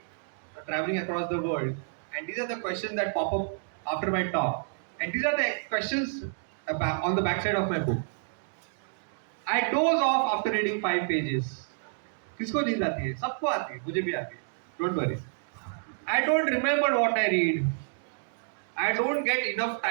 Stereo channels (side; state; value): left; silent; digital silence